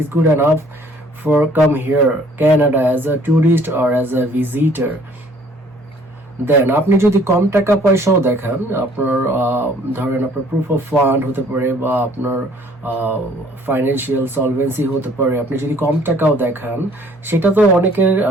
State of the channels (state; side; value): normal; both; correlation 0.58